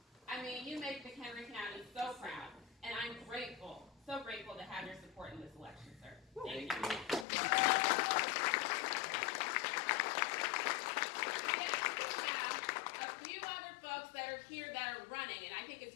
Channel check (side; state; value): right; drops out; at 7.2 s